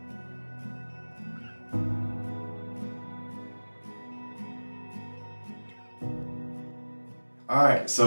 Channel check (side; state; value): both; inverted; correlation -1.00